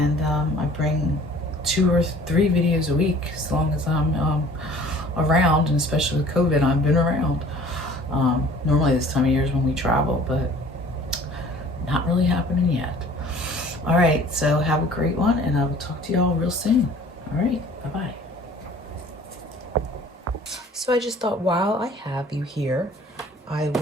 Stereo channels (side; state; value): both; normal; correlation 0.50